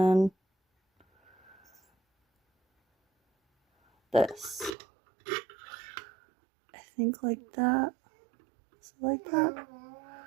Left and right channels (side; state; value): left; drops out; at 4.8 s